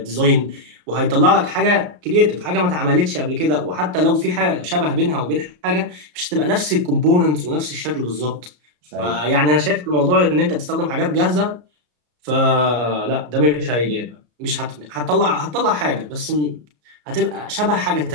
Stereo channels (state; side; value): late; left; 33 ms